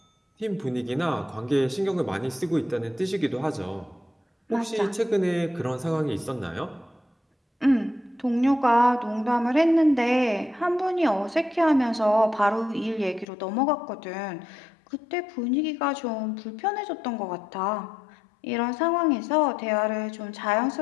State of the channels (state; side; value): drops out; right; at 13.2 s